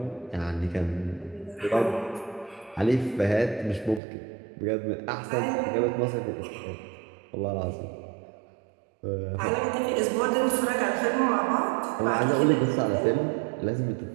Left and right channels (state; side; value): drops out; left; at 4.0 s